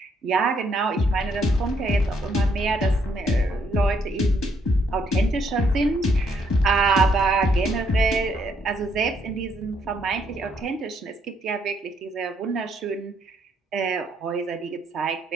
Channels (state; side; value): normal; both; correlation 0.72